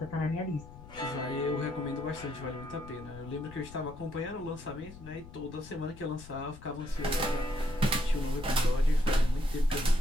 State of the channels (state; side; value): noise; left; rumble, 16 dB below the sound